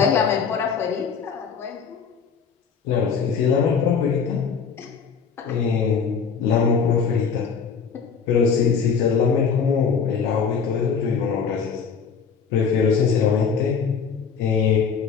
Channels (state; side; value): quieter; right; 6.2 dB